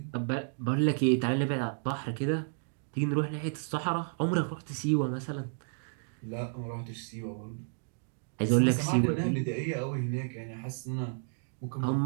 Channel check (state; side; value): silent; left; digital silence